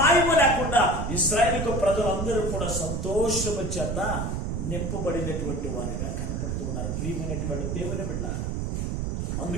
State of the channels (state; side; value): noise; right; rumble, 1 dB below the sound